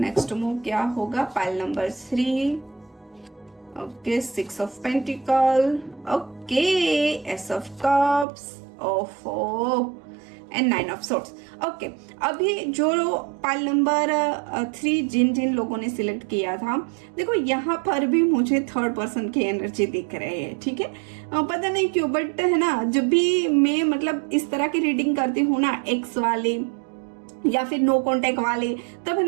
मूव क्या होगा। Pile number 3, okay 6 of pentacle, okay S of cups, ओफो एंड 9 ऑफ सोर्ड्स। ओके, अभी जो पाइल नंबर 3 जिन जिन लोगों ने सिलेक्ट किया था, देखो यहाँ पर भी मुझे थर्ड पर्सन की एनर्जी दिख रही है, ठीक है। पता नहीं क्यों, बट है ना, जब भी मैं मतलब इस तरह की रीडिंग करती हूँ ना, एक्स वाले या फिर नो कांटेक्ट वाले, तब है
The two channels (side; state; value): left; drops out; at 8.2 s